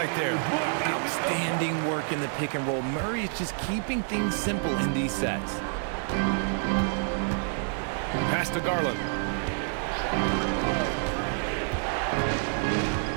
there. Outstanding work in the pick and roll. Murray is just keeping things simple in these sets. Pass to Garland.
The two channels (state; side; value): silent; left; 59 dB below the other